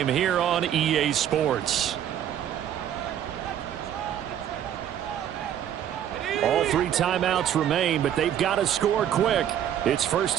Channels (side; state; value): left; quieter; 10.2 dB